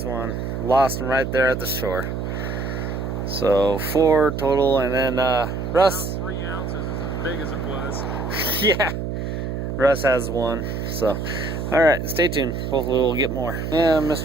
one. Lost him right there at the shore. So 4 total, and then Russ. About 3 ounces is as big as it was. Yeah, Russ has 1. So, alright, stay tuned. Hopefully we'll get more. And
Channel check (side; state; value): right; noise; hum, 4 dB below the sound